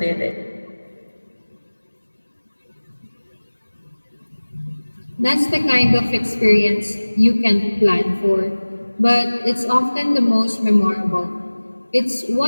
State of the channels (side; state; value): both; inverted; correlation -1.00